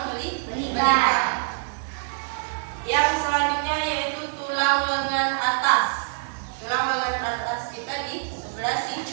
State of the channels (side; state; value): left; silent; digital silence